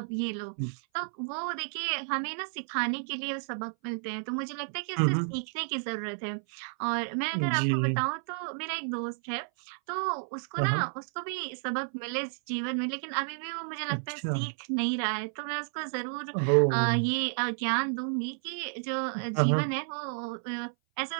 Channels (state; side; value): silent; left; 57 dB below the other